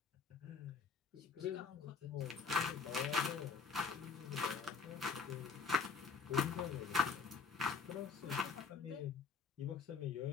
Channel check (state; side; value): quieter; right; 5.4 dB